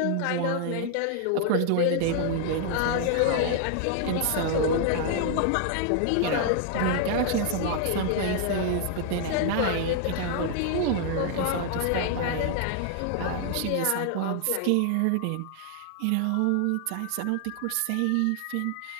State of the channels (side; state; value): both; different; correlation 0.00